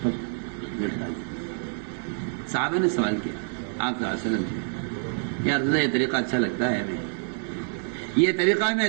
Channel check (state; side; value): silent; left; 56 dB below the other